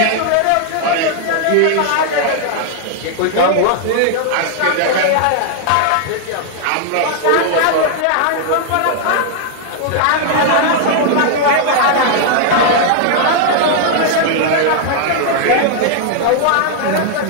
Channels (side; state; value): both; different; correlation 0.00